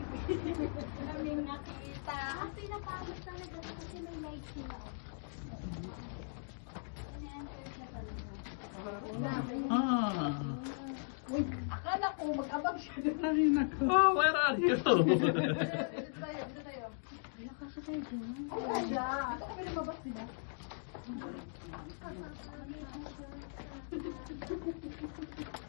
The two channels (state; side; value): silent; right; digital silence